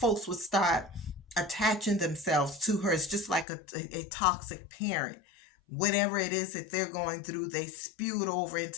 would start attaching themselves to her. It's just like a toxic parent. Whatever it is that they're going through, they spew it over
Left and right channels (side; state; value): right; drops out; at 3.5 s